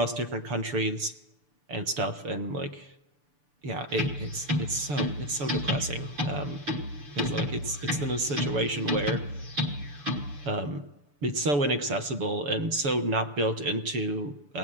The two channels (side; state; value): left; late; 6.9 ms